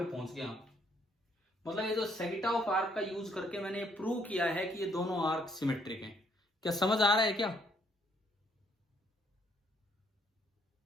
पहुंच गया। मतलब ये जो सेगिटा ऑफ आर्क का यूज करके मैंने प्रूव किया है कि ये दोनों आर्क सिमेट्रिक हैं। क्या समझ आ रहा है क्या?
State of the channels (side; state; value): both; normal; correlation 0.69